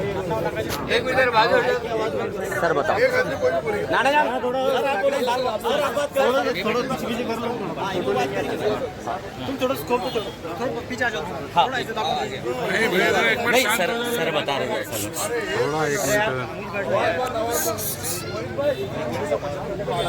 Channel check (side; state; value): both; identical; correlation 1.00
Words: एक मिनट बाद सर बताओ नाना जान थोड़ा पीछे कर लो तुम थोड़ा स्कोप थोड़ा पीछे आ जाओ नहीं सर बता रहे हैं सर थोड़ा एक